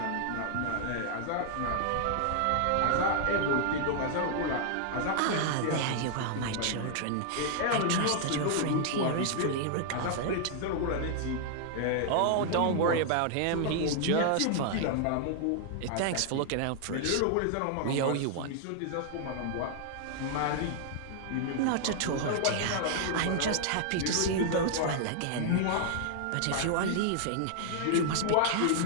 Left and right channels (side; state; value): both; different; correlation -0.01